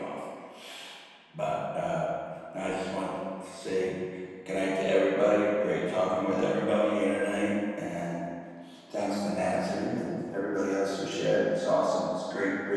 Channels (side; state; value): both; identical; correlation 1.00